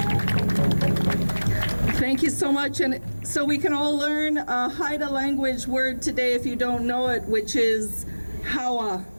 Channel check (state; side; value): inverted; both; correlation -1.00